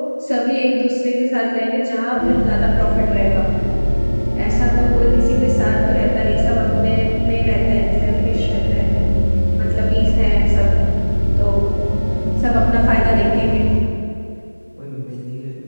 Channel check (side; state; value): both; inverted; correlation -1.00